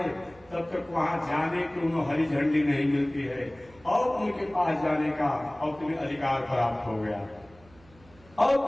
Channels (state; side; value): noise; right; hum, 27 dB below the sound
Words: तब तक वहां जाने की उन्हें हरी झंडी नहीं मिलती है, और उनके पास जाने का और तुम्हें अधिकार प्राप्त हो गया, और